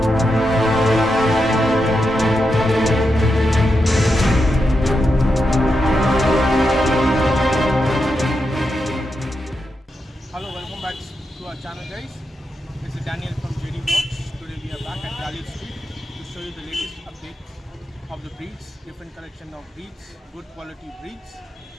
Hello, welcome back to our channel, guys. This is Daniel from JD Vlogs. Today we are back at Gallif Street to show you the latest update of the breeds, different collection of breeds, good quality breeds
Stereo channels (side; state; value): both; normal; correlation 0.86